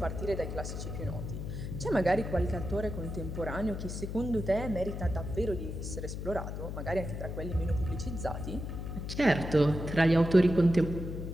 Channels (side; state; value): left; noise; hum, 6 dB below the sound